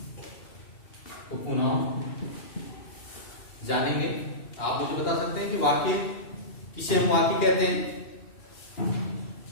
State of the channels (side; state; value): right; late; 2.9 ms